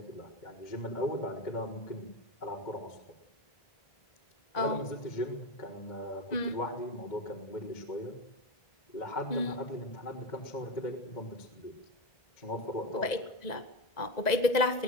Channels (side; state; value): right; late; 1.9 ms